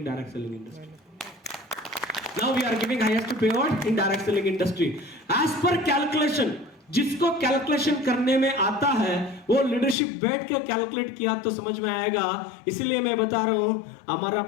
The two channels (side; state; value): right; drops out; at 10.0 s